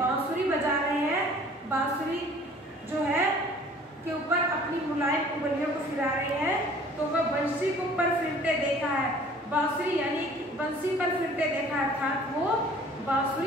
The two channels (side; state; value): both; normal; correlation 0.51